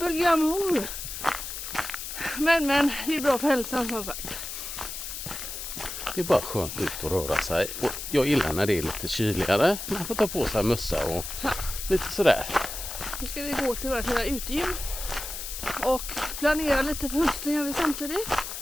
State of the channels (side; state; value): left; noise; hiss, 7 dB below the sound